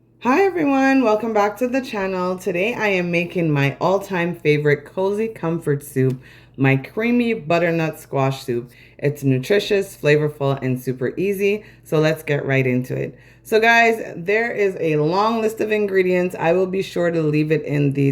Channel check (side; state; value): both; identical; correlation 1.00